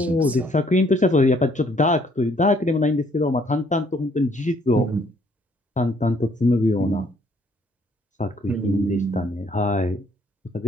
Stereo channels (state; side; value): normal; both; correlation 0.65